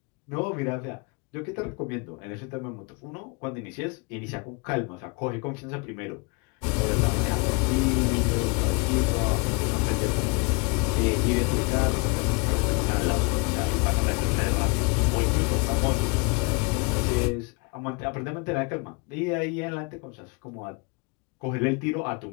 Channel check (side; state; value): right; quieter; 31.2 dB